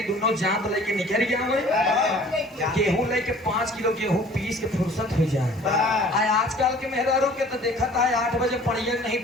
दोनों जांत लेके निकल गया हुए गेहूं लेके 5 किलो गेहूं पीस के फुर्सत हो जाए आजकल के मेहरारों के तो देखा था 8 बजे पढ़िए नहीं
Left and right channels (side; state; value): both; normal; correlation 0.50